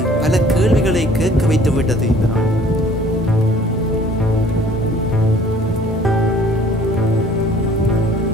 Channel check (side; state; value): both; normal; correlation 0.54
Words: பல கேள்விகளை கேட்க வைத்து விட்டது இந்த நாள்.